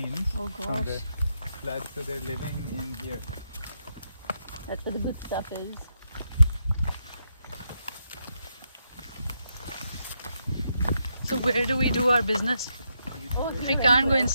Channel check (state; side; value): inverted; both; correlation -0.81